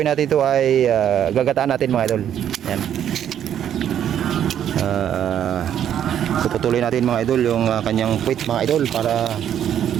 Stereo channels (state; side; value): quieter; left; 9.9 dB